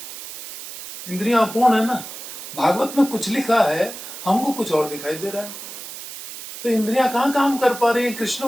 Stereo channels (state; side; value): noise; right; hiss, 11 dB below the sound